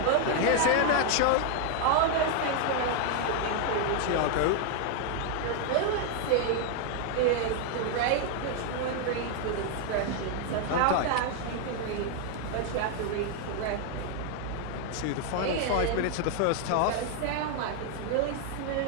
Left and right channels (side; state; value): both; different; correlation 0.00